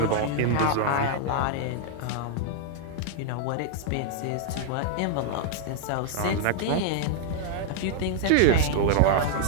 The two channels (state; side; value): different; both; correlation -0.01